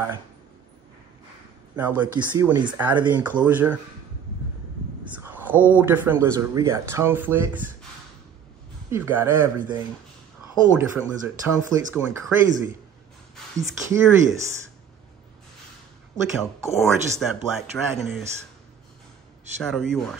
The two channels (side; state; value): left; quieter; 8.0 dB